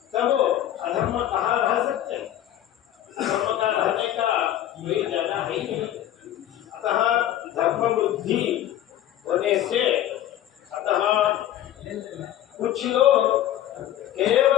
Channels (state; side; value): quieter; right; 12.1 dB